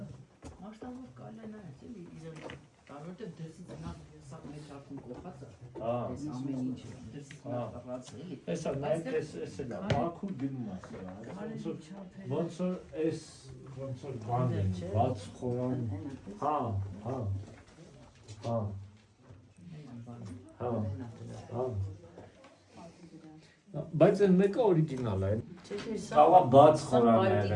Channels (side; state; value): both; identical; correlation 1.00